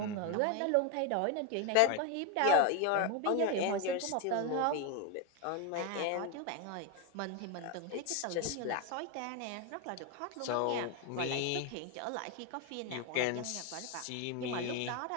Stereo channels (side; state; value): both; different; correlation 0.01